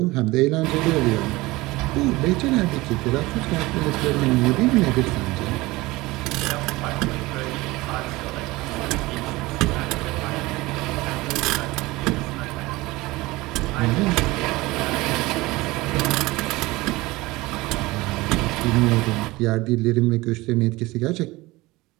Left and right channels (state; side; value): quieter; left; 20.7 dB